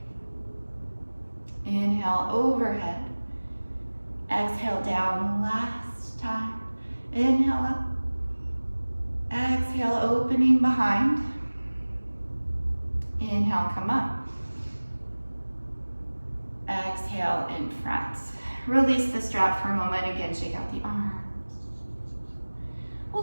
Inhale overhead, exhale down. Last time. Inhale up, exhale opening behind. Inhale, come up. Exhale in front. Release the strap for a moment. Again, shake out the arms.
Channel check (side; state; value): both; inverted; correlation -1.00